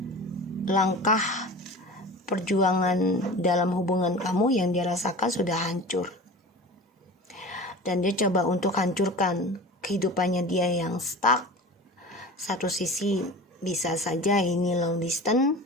langkah perjuangan dalam hubungan kamu yang dia rasakan sudah hancur, dan dia coba untuk hancurkan kehidupannya dia yang stuck. Satu sisi bisa saja ini long distance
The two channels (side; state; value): both; normal; correlation 0.35